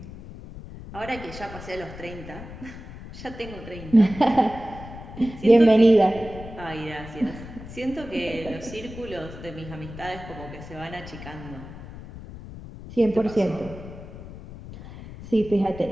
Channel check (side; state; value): left; noise; rumble, 13 dB below the sound